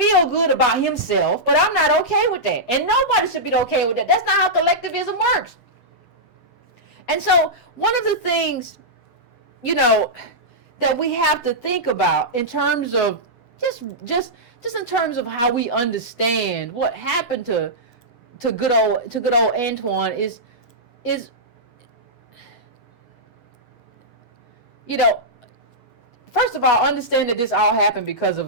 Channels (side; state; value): right; late; 7.9 ms